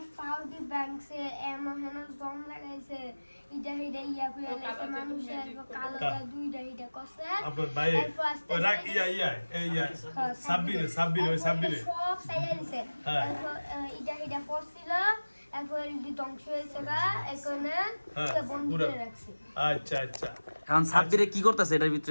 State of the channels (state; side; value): inverted; both; correlation -1.00